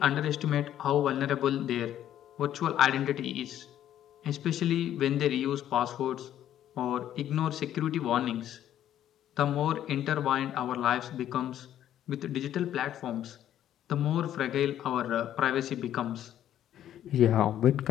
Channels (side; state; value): right; quieter; 11.3 dB